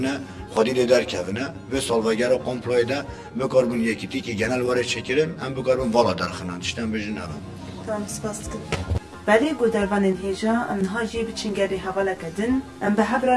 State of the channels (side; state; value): both; identical; correlation 1.00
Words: خودی در کهونه و سالوگر و کمپلای ده بکاربون یکی تی که گنال وارد چکرن هم بکاربون والا در خنان داشتن بجن اول. تمام سپاس کن. ولی گودربان هیجا آنها جیب چنگری حواله کردن ام به حبر